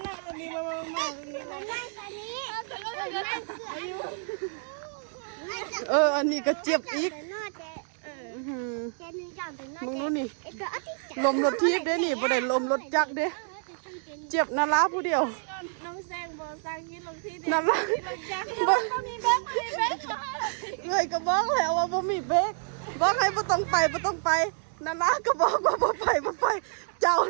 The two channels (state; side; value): silent; left; 59 dB below the other